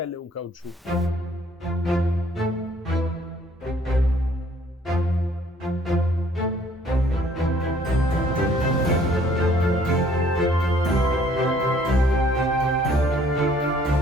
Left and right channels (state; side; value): normal; both; correlation 0.60